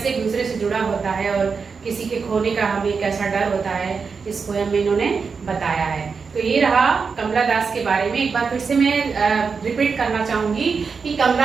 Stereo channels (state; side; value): quieter; left; 5.3 dB